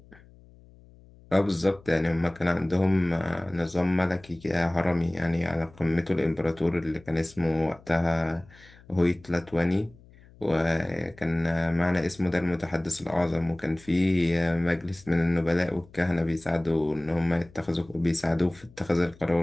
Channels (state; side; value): noise; left; hum, 25 dB below the sound